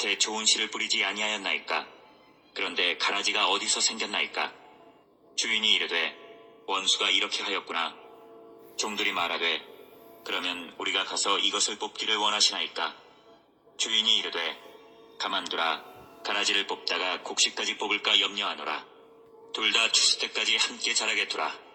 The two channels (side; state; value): both; identical; correlation 1.00